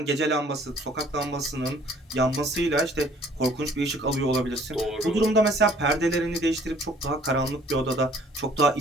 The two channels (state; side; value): normal; both; correlation 0.57